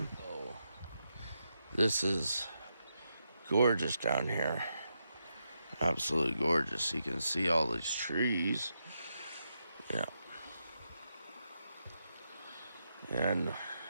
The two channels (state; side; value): inverted; both; correlation -0.84